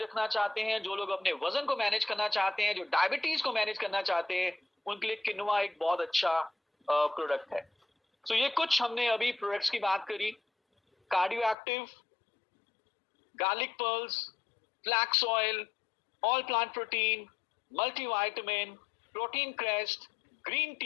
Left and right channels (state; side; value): drops out; right; at 11.6 s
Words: चाहते हैं, जो लोग अपने वजन को मैनेज करना चाहते हैं, जो डायबिटीज को मैनेज करना चाहते हैं, उनके लिए किनुआ एक बहुत अच्छा प्रोडक्ट है। तो ये कुछ हमने अभी प्रोडक्ट्स की बात करी। Cardio active, garlic pearls, flax oil, all plant protein, multivitamin, protein crest, green